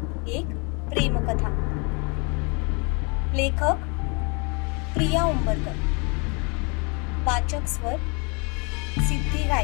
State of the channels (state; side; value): quieter; right; 32.1 dB